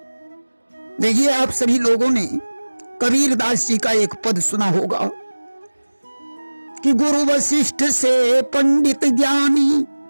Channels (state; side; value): inverted; both; correlation -1.00